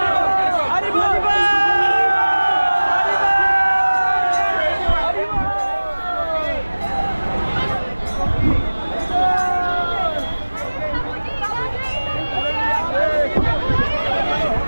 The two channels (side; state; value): both; inverted; correlation -1.00